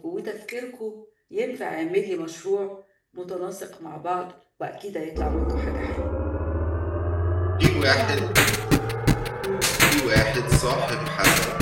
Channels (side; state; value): both; identical; correlation 1.00